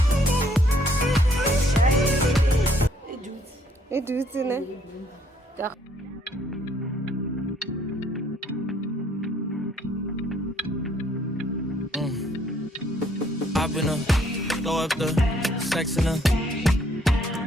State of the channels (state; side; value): normal; both; correlation 0.65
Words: it do it, Hop in her, throw up the sex in her.